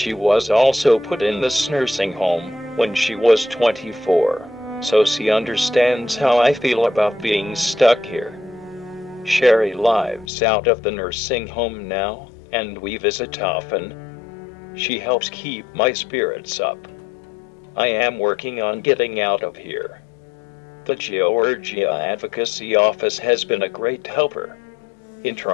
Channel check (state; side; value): drops out; right; at 10.3 s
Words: was also put in this nursing home when she was 24, so she understands how I feel about being stuck here. Sherry lives out of the nursing home now, and we visit often. She helps keep my spirits up. I am working on getting out of here. The Georgia Advocacy Office has been a great helper in